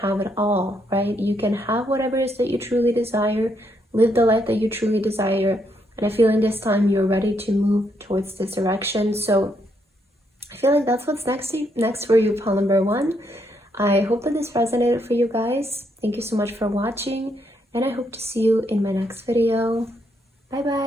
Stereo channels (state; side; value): normal; both; correlation 0.76